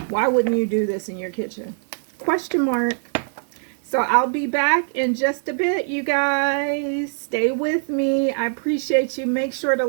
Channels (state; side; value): silent; left; 58 dB below the other